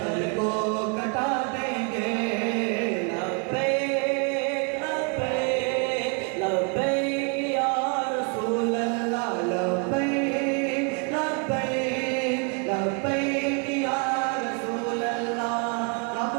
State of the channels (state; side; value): quieter; left; 36.9 dB